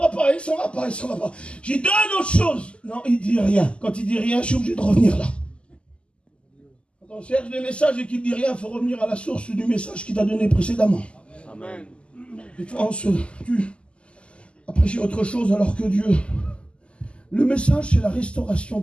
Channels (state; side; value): late; right; 0.053 ms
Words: pas, il s'en va pas, il s'en va pas. J'ai donné autre chose. Non, il dit rien. Quand il dit rien, je suis obligé de revenir là. Quand on cherche des messages et qu'il dit rien, il faut revenir à la source du message qu'il t'a donné précédemment. Amen. Et toi, tu as prêché autre chose alors que Dieu. Le message, c'est la restauration